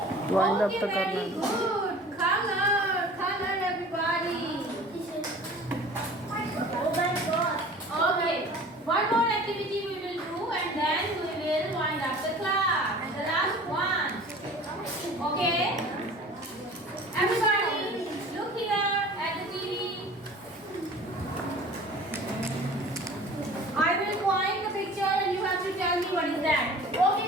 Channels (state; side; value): normal; both; correlation 0.44